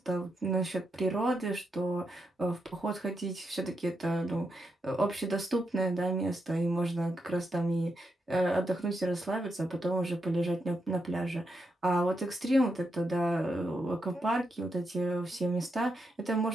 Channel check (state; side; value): normal; both; correlation 0.84